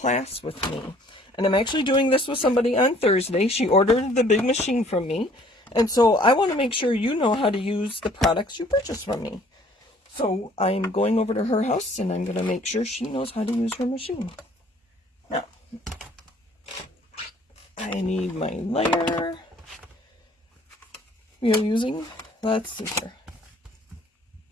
with me. And I'm actually doing this with somebody on Thursday. She ordered the big machine from me. And so I want to make sure you know how to use the products you purchase from me. So I'm going over to her house and I'm going to make sure she knows how to use her machine. Now, I need my layer. We are using, let's see here.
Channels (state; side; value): normal; both; correlation 0.57